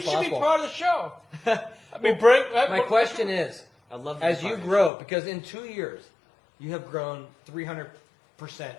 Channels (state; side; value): drops out; right; at 4.9 s